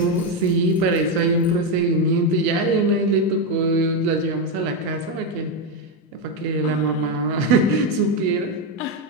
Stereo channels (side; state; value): both; normal; correlation 0.07